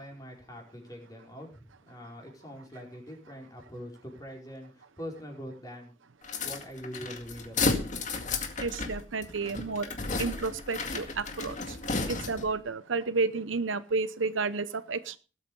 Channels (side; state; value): both; normal; correlation 0.06